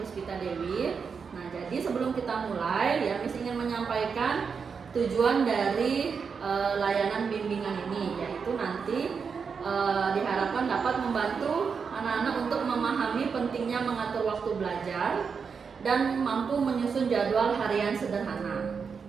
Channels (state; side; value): quieter; left; 5.8 dB